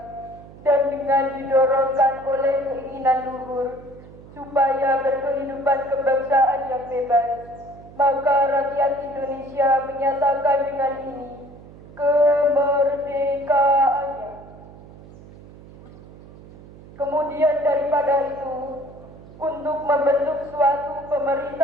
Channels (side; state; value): right; noise; hum, 19 dB below the sound